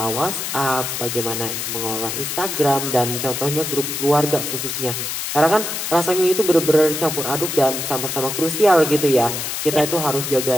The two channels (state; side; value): noise; left; hiss, 4 dB below the sound